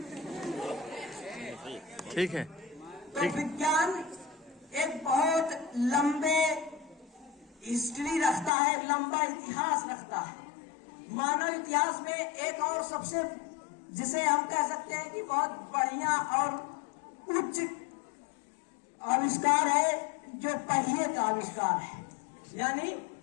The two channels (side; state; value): right; drops out; at 8.5 s